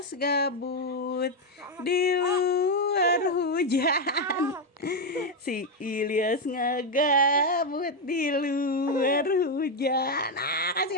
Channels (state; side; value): normal; both; correlation 0.05